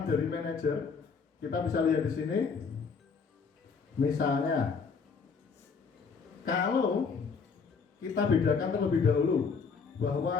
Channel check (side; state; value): right; quieter; 5.4 dB